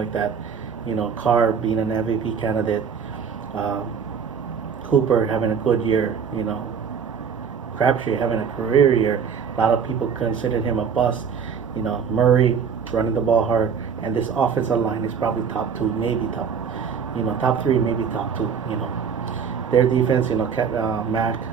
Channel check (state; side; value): quieter; left; 6.7 dB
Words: that. Carr being an MVP candidate, Cooper having a good year, Crabtree having a career year. A lot of people considered him a bust. Murray running the ball hard, and this offensive line is probably top two, maybe top three, maybe top two. Their defense, Mack